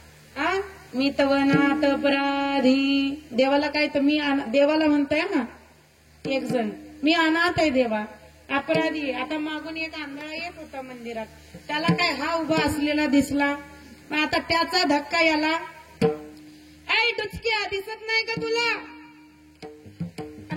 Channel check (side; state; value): both; identical; correlation 1.00